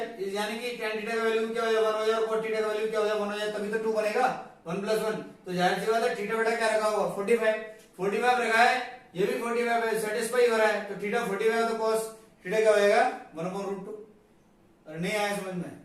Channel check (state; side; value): identical; both; correlation 1.00